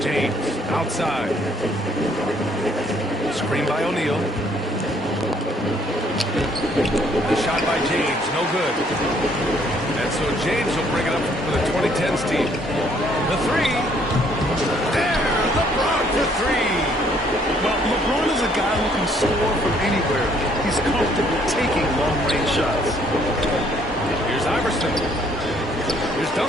James, outside. Screen by O'Neal. The shot by James, no good. And so James will bring it up for the 2010s team. The three. There, LeBron for 3. Well, LeBron is a guy who can score from anywhere. He's comfortable taking long-range shots. Here's Iverson. Here's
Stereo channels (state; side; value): normal; both; correlation 0.65